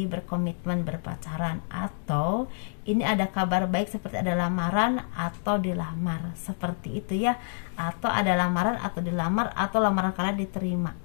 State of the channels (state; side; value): silent; right; digital silence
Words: berkomitmen berpacaran, atau ini ada kabar baik seperti ada lamaran atau dilamar, seperti itu ya, atau ada lamaran atau dilamar, atau lamaran kalian diterima.